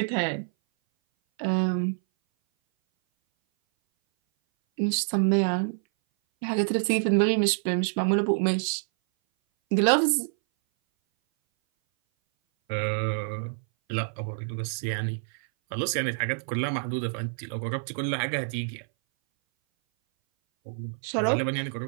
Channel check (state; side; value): silent; left; 58 dB below the other